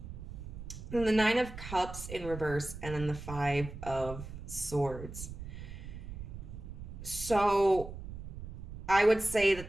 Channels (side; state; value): right; noise; rumble, 10 dB below the sound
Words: And the Nine of Cups in reverse, and then the Five of Swords. So I would say